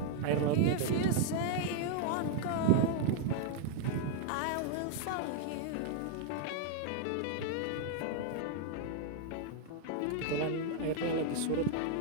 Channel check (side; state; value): both; different; correlation 0.00